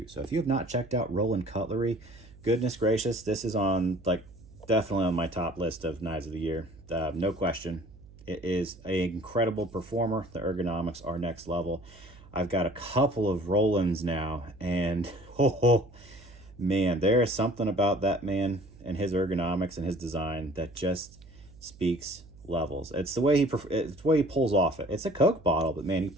So if you have not checked out Roland Cutlery, goodness gracious, this is on definitely on my top list of knives of the year. No question. It is an incredible performer. The ergonomics are next level. I've got a couple of Rolands now, and man, there is something about that man and his ergonomics and his design that just speaks levels. It's the way he pulls off it. It's a Coke bottle, but man, he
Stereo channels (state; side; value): noise; right; hum, 22 dB below the sound